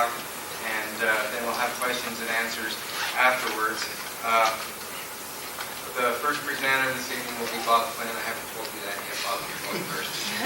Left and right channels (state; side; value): identical; both; correlation 1.00